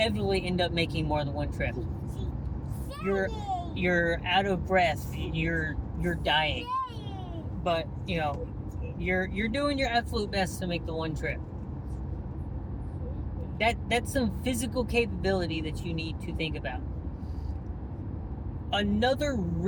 end up making more than one trip. You're out of breath. You're dying. But you're doing your absolute best to make the one trip. That's some physical capability that you need to think about. Another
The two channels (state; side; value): identical; both; correlation 1.00